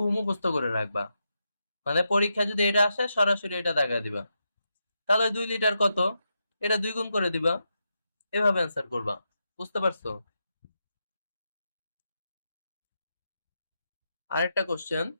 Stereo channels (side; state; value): both; inverted; correlation -0.85